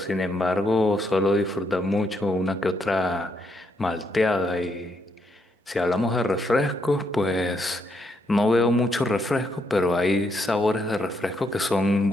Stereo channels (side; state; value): both; normal; correlation 0.76